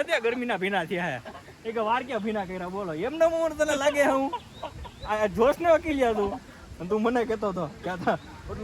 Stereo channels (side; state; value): both; identical; correlation 1.00